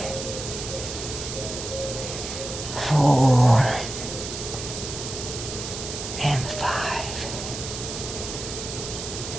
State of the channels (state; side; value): noise; right; hiss, 7 dB below the sound